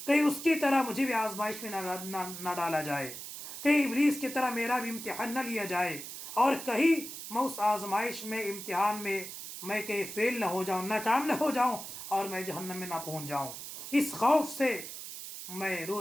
कहीं उसकी तरह मुझे भी आजमाइश में ना डाला जाए, कहीं इब्लीस की तरह मेरा भी इम्तिहान न लिया जाए, और कहीं मैं उस आजमाइश में, इम्तिहान में मैं कहीं फेल ना हो जाऊँ, नाकाम ना हो जाऊँ, और मैं जहन्नम में ना पहुँच जाऊँ। इस खौफ से मैं रो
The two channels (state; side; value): noise; right; hiss, 10 dB below the sound